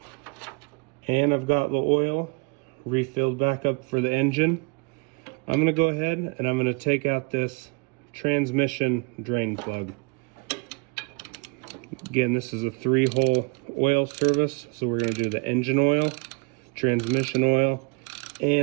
and I've got the oil refilled back up for the engine, I'm gonna go ahead and I'm gonna take out this transmission drain plug. Again, this is a 3-hole oil service, so we're gonna do the engine oil, transmission oil,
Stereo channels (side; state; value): left; quieter; 31.0 dB